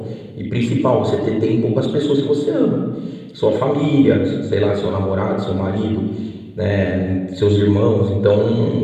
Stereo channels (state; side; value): identical; both; correlation 1.00